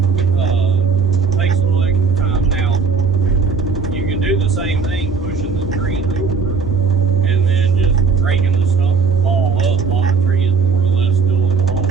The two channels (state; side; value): quieter; left; 5.5 dB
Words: Takes a little extra time. Now, you can do the same thing, pushing the tree over and then just breaking the stump and fall up while the tree is more or less still in the hole,